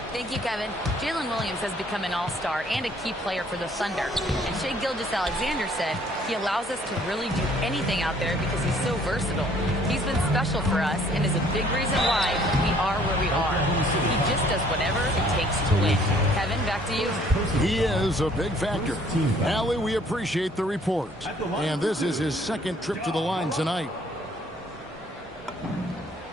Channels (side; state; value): both; normal; correlation 0.60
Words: Thank you, Kevin. Jalen Williams has become an all-star and a key player for the Thunder. And Shai Gilgeous-Alexander said he allows us to really do anything out there because he's so versatile. He's been special for us and is a big reason why we are where we are. He just does whatever it takes to win. Kevin, back to you. He is a big factor. Allie, we appreciate the report. And this is his second trip to the line tonight.